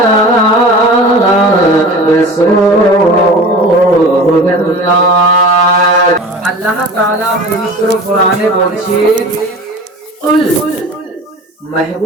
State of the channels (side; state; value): both; normal; correlation 0.37